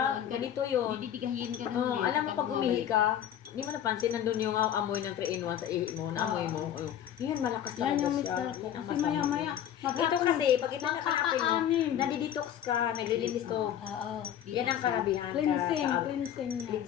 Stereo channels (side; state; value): right; quieter; 10.3 dB